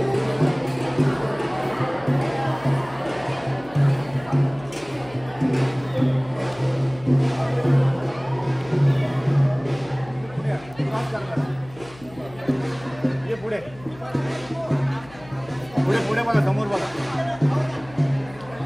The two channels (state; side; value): noise; left; hum, 22 dB below the sound